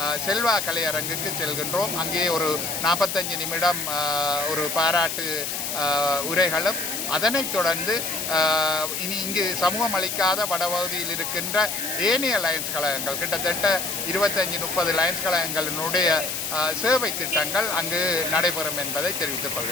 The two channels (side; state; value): left; noise; hiss, 3 dB below the sound